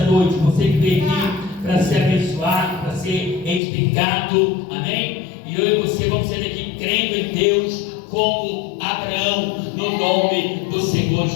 noite. Você que veio aqui para ser abençoado, para ser edificado. Amém? E eu e você vamos ser aqui crendo em Deus como Abraão, no nome do Senhor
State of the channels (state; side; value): drops out; right; at 3.6 s